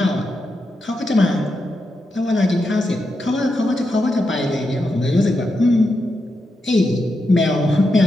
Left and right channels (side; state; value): both; normal; correlation 0.86